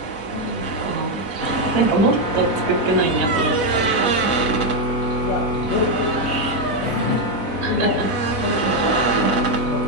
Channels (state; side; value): late; right; 4.0 ms